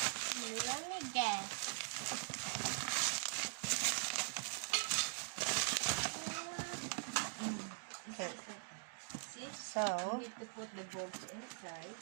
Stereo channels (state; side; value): silent; left; digital silence